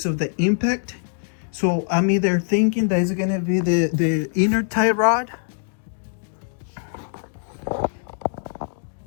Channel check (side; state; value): right; silent; digital silence